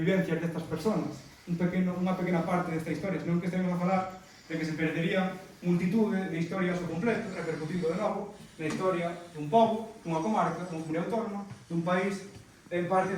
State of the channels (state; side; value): identical; both; correlation 1.00